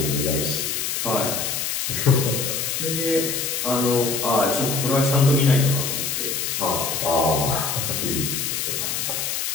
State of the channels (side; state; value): left; noise; hiss, 1 dB below the sound